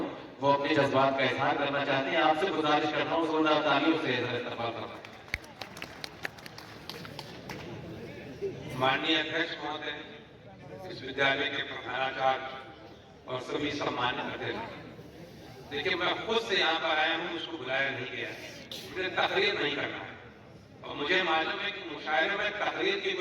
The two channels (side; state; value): both; identical; correlation 1.00